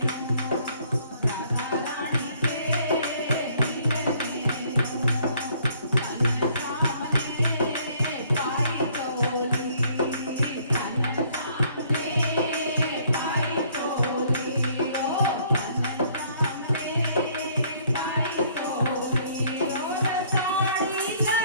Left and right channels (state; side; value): inverted; both; correlation -0.62